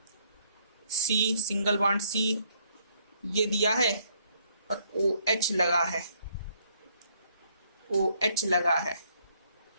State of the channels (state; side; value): inverted; both; correlation -0.68